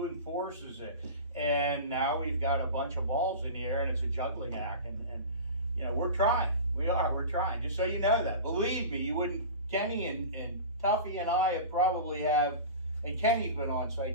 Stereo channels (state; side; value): inverted; both; correlation -0.33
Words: enforces it? And now we've got a bunch of balls in the air, and it's a juggling act, and you know, we're trying, we're trying, just so you know that, believe me, you wouldn't, Kenny and Tuffy and I and Kenny's been on